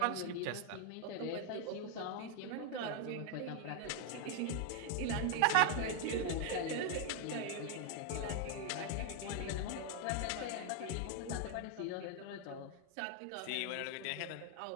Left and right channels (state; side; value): different; both; correlation 0.00